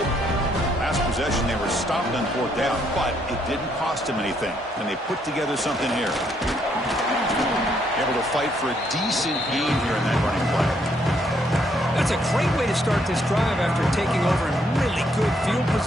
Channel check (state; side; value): normal; both; correlation 0.72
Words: Last possession, they were stopped on 4th down, but it didn't cost them anything. And they put together something here. Able to fight for a decent gain here in that running play. That's a great way to start this drive after taking over in really good field